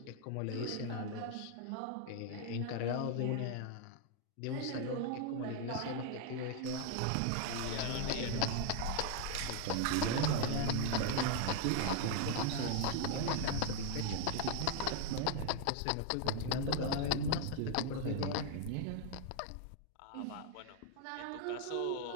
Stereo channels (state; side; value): different; both; correlation 0.00